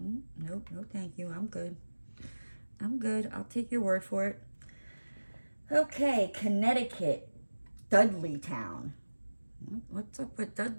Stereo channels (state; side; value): inverted; both; correlation -1.00